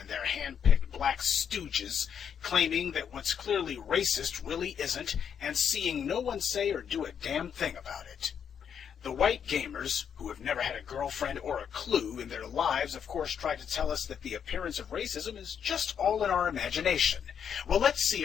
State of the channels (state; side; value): quieter; right; 7.9 dB